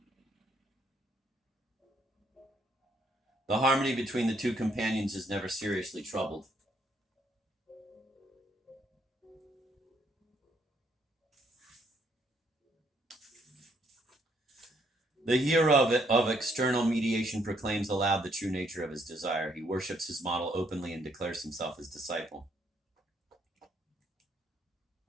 The harmony between the two companions is never seriously troubled. The hero of external mediation proclaims aloud the true nature of his desire. He worships his model openly and declares himself his disciple.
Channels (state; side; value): normal; both; correlation 0.70